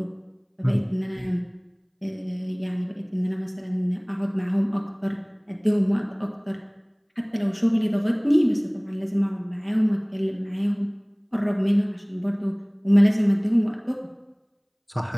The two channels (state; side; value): identical; both; correlation 1.00